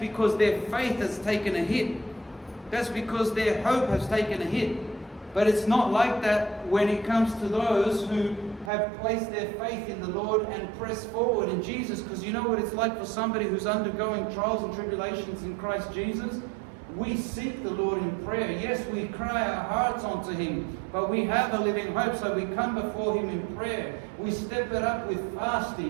their faith has taken a hit. That's because their hope has taken a hit. But it's not like that when it comes to those who have placed their faith in the Lord and press forward in Jesus. Because you know what it's like for somebody who's undergoing trials and tribulations in Christ Jesus? We seek the Lord in prayer. Yes, we cry our hearts unto Him, but we have a living hope, so we come before Him in prayer. We step it up with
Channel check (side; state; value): left; drops out; at 8.7 s